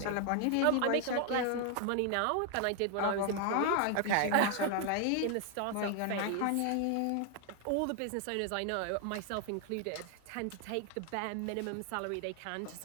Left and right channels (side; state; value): both; different; correlation 0.00